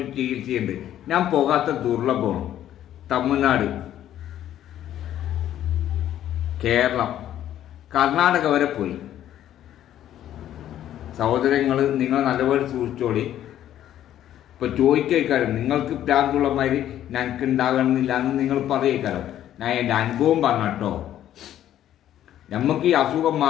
ചികിത്സയുണ്ട്. ഞാൻ പോകാത്ത ദുർലഭമാണ്. തമിഴ്നാട്, കേരളം, കർണാടക വരെ പോയി. സഹോദരങ്ങൾ, നിങ്ങൾ നല്ലപോലെ സൂക്ഷിച്ചോളി. ഇപ്പൊ ചോദിക്കാരം നിങ്ങൾക്ക് പ്രാന്തുള്ള മാതിരി ഞങ്ങൾക്ക് ഉണ്ടാകണമെന്നില്ല എന്ന് നിങ്ങൾ പറയേക്കാരം. ഞാൻ എൻ്റെ അനുഭവം പറഞ്ഞോ. നമുക്ക് ഈ അസുഖം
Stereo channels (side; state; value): right; quieter; 11.7 dB